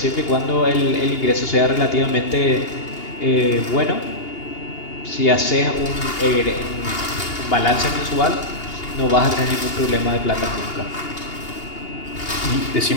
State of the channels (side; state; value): right; late; 2.8 ms